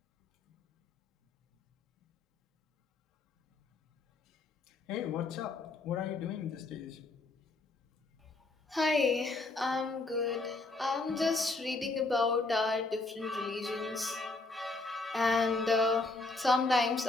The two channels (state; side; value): quieter; right; 3.3 dB